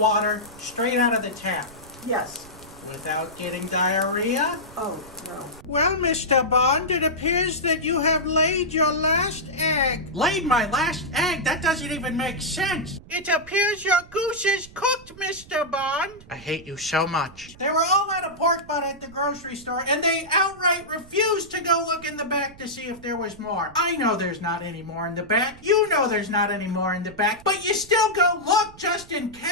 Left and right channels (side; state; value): right; noise; rumble, 21 dB below the sound